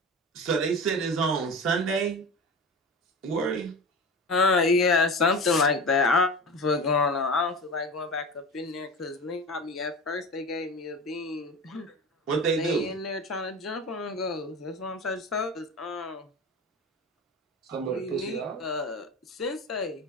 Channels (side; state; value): both; normal; correlation 0.31